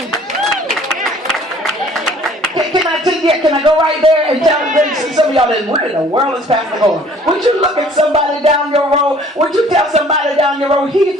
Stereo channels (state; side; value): normal; both; correlation 0.54